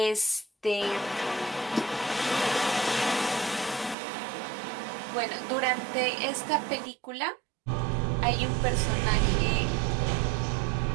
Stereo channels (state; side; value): drops out; left; at 4.0 s